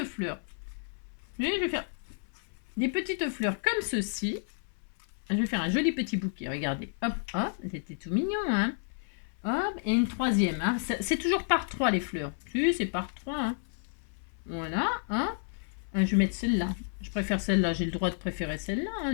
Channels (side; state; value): right; silent; 57 dB below the other